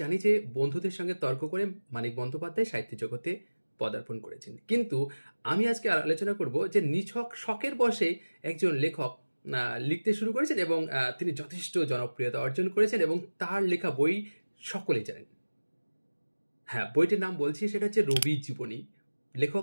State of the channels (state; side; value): inverted; both; correlation -1.00